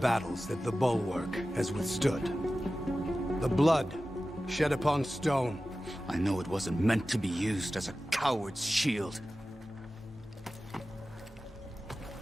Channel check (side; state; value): both; normal; correlation 0.95